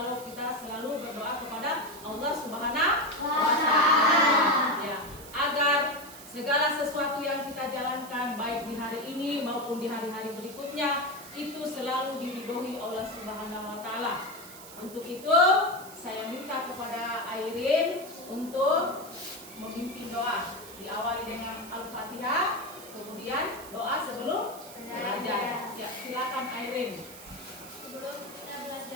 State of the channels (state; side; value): noise; right; hiss, 16 dB below the sound